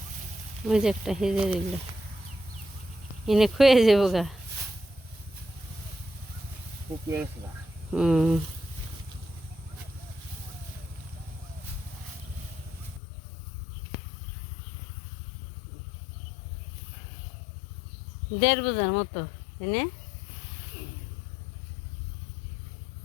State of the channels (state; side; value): drops out; right; at 13.0 s